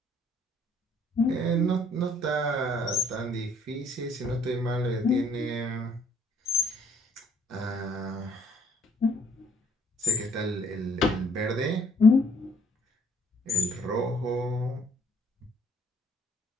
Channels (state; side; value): normal; both; correlation 0.62